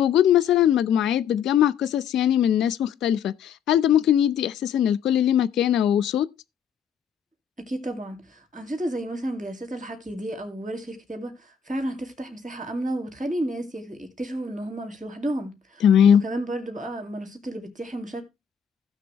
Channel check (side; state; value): right; quieter; 7.7 dB